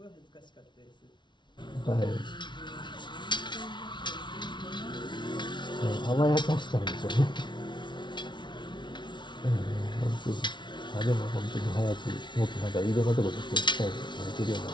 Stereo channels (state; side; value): late; right; 0.23 ms